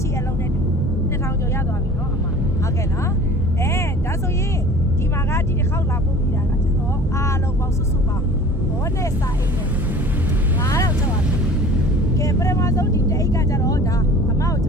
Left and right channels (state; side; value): normal; both; correlation 0.43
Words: ရှိအလုံးနဲ့2000ကျော်ရသွားပြီနော်အမဟုတ်ကဲ့နော်ဒါဆိုရင်ဒီမှာကဒီတစ်ခေါက်လာပို့ပြီးတာကကျွန်တော်အားလုံးပေါင်းစုစုပေါင်းဘောနဲ့စာအိတ်နဲ့9000ကျော်ပါတယ်ကဲပထမဆုံးဒီတအိတ်ကကြတော့ဒါအမကိုကျ